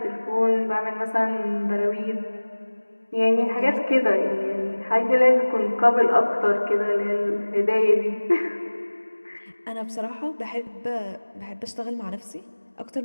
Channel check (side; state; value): both; inverted; correlation -1.00